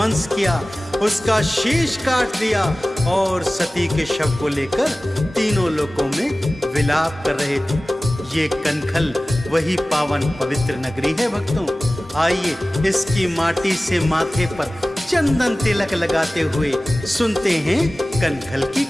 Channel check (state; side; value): normal; both; correlation 0.97